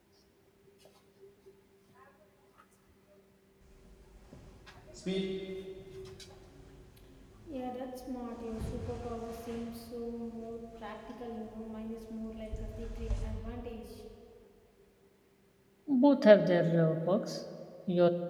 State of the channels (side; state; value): both; identical; correlation 1.00